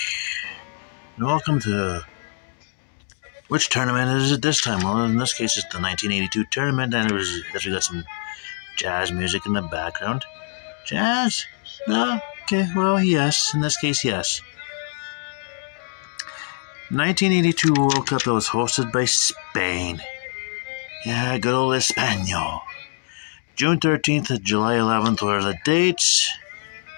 Welcome to... Which tournament is it this time? Well, in this case, it's the 1982 tournament, and we got some jazz music in the background. Jazz? No? Okay, well, yes. In this case, yes. 1982 World Cup that was hosted by Spain. Yeah, good old Espanol. June 13th to July 11th were the dates.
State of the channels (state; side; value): silent; right; 55 dB below the other